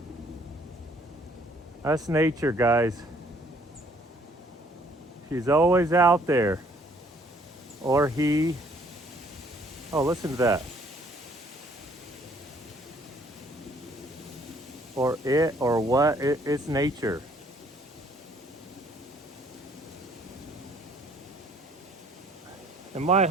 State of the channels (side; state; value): both; normal; correlation 0.61